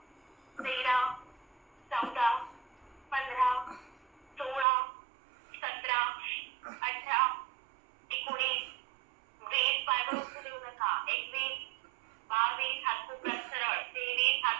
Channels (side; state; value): left; drops out; at 4.7 s